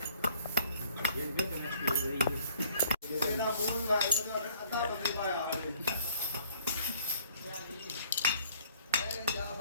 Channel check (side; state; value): both; inverted; correlation -0.58